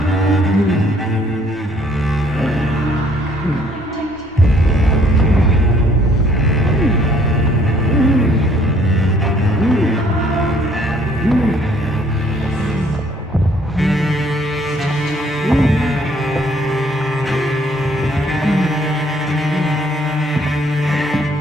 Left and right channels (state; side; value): normal; both; correlation 0.62